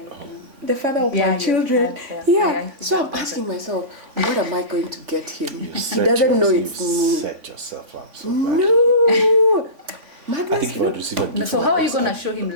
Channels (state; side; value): late; left; 3.5 ms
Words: know. The father of Yeah, my children. yes, Yeah. I So I'm think asking myself, what am I going to get him? You He set doesn't know yourself- it's you me. set yourself up so bad. No. I think Magnus, if I would receive a gift, So how are you going to show him